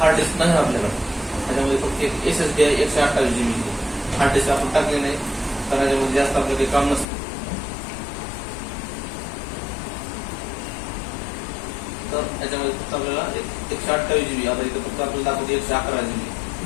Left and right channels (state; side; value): drops out; right; at 7.1 s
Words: डिस्क नाही आपल्याला, त्याच्यामध्ये फक्त एक SSD आहे 128 GB. हार्ड डिस्क आपण टाकले नाही कारण त्याच्यामध्ये जास्त आपलं काही काम नसतं. तर त्याच्यामध्ये फक्त आपल्याला 128 GB, आता इथं फक्त आपल्याला दाखवते 111 GB.